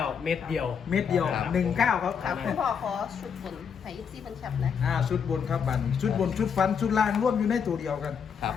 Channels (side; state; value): right; quieter; 6.9 dB